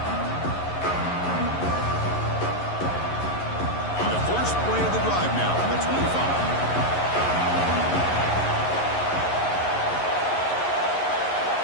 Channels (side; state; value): right; late; 11 ms